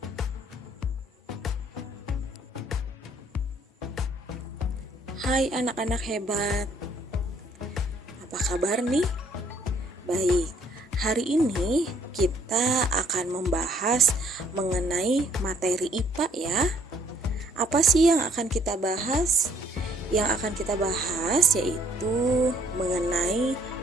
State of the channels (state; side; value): normal; both; correlation 0.64